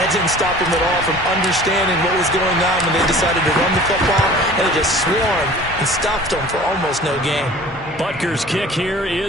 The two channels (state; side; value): normal; both; correlation 0.45